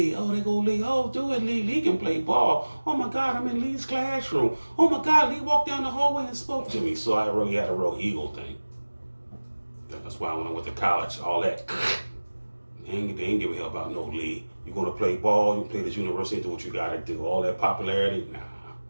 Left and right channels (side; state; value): both; inverted; correlation -1.00